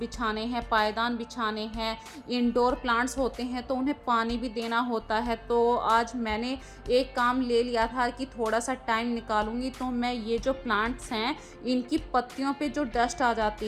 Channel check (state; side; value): identical; both; correlation 1.00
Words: हैं, पायदान बिछाने हैं, इंडोर प्लांट्स होते हैं तो उन्हें पानी भी देना होता है। तो आज मैंने एक काम ले लिया था कि थोड़ा सा टाइम निकालूंगी तो मैं ये जो प्लांट्स हैं इनकी पत्तियों पे जो डस्ट आ जाती